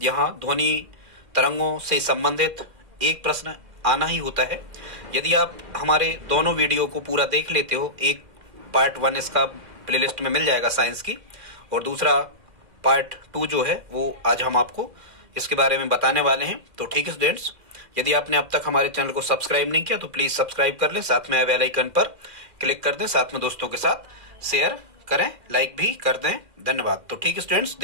यहाँ ध्वनि तरंगों से संबंधित एक प्रश्न आना ही होता है। यदि आप हमारे दोनों वीडियो को पूरा देख लेते हो, एक पार्ट 1 इसका प्लेलिस्ट में मिल जाएगा साइंस की, और दूसरा पार्ट 2 जो है वो आज हम आपको इसके बारे में बताने वाले हैं। तो ठीक है स्टूडेंट्स, यदि आपने अब तक हमारे चैनल को सब्सक्राइब नहीं किया तो प्लीज सब्सक्राइब कर लें, साथ में बेल आइकन पर क्लिक कर दें, साथ में दोस्तों के साथ शेयर करें, लाइक भी कर दें। धन्यवाद। तो ठीक है स्टूडेंट्स,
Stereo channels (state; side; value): late; left; 2.1 ms